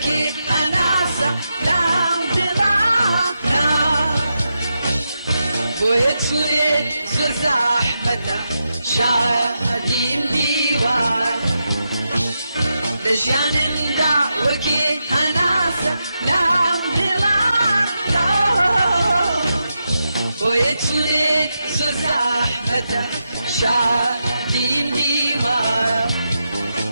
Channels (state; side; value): inverted; both; correlation -0.86